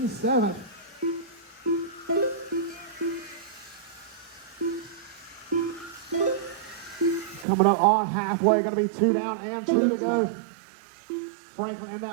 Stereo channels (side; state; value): left; drops out; at 7.5 s